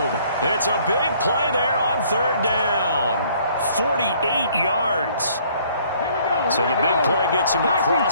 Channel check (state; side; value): inverted; both; correlation -0.60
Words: It's a big play there on 3rd down. 48 yards. So the big play gets him